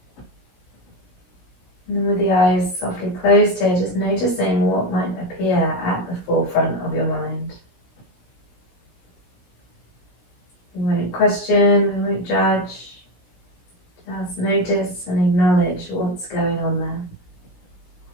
And with the eyes softly closed here, just noticing what might appear at the forefront of your mind. We won't question, we won't judge, just notice and acknowledge what's going on there.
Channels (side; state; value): right; late; 16 ms